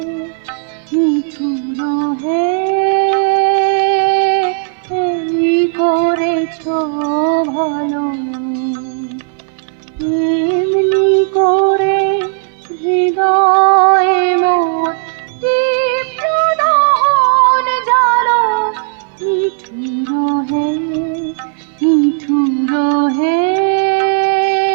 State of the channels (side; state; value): left; silent; 56 dB below the other